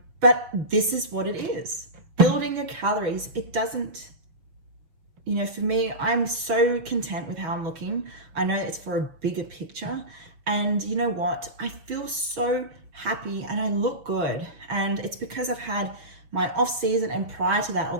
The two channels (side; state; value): left; late; 6.2 ms